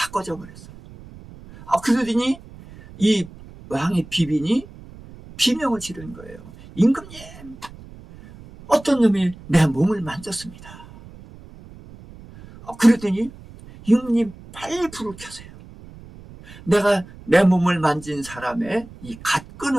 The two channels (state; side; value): noise; right; rumble, 19 dB below the sound